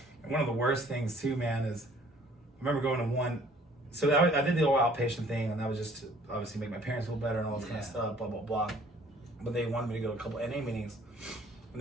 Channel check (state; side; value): normal; both; correlation 0.57